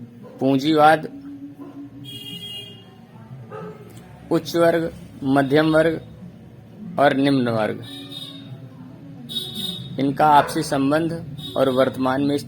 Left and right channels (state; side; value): identical; both; correlation 1.00